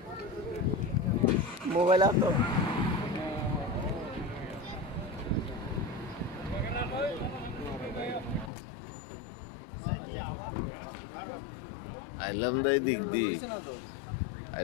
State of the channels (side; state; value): right; drops out; at 8.5 s